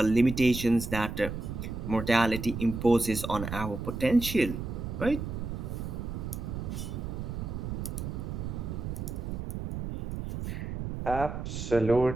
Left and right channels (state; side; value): noise; right; rumble, 5 dB below the sound